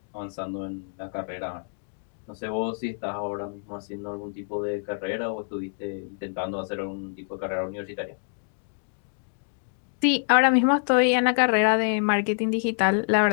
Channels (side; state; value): right; silent; digital silence